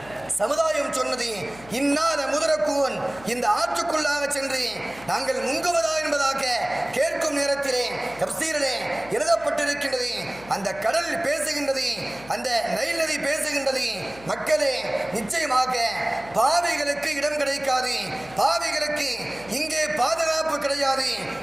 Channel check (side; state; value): left; noise; hum, 21 dB below the sound